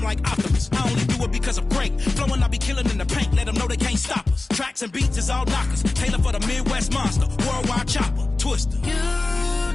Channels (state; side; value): quieter; right; 3.2 dB